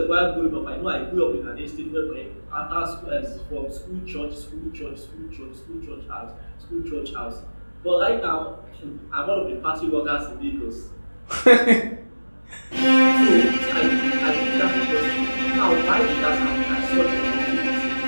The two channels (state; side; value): inverted; both; correlation -1.00